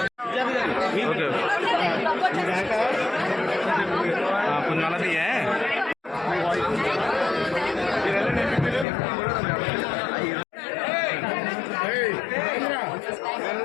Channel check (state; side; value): drops out; right; at 8.8 s